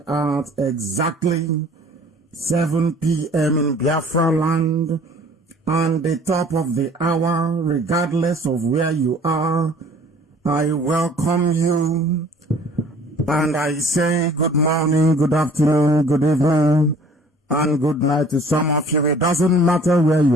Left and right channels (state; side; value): normal; both; correlation 0.51